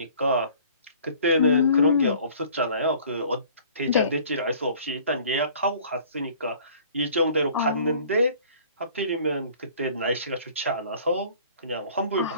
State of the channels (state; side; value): inverted; both; correlation -0.51